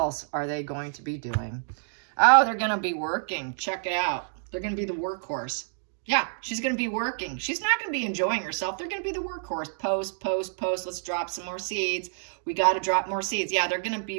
are they going to be doing? Oh, they're going to be working. Check it out. They're going to be the workhorse. Yeah, she's going to be working. She's not going to be enjoying herself. They're going to be the workhorse. Post, post, post. Let's drop some more seeds. We got to drop more seeds. Yeah, they're going to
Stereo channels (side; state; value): left; silent; digital silence